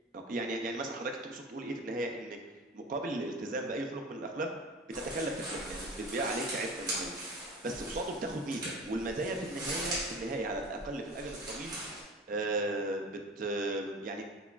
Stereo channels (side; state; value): both; normal; correlation 0.36